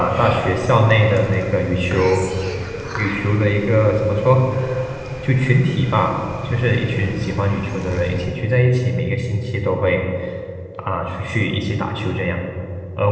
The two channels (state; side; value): identical; both; correlation 1.00